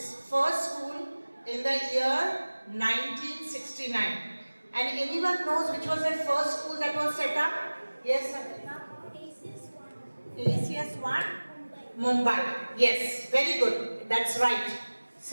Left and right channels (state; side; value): inverted; both; correlation -1.00